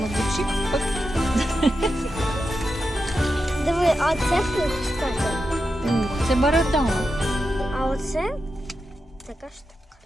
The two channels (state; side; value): normal; both; correlation 0.88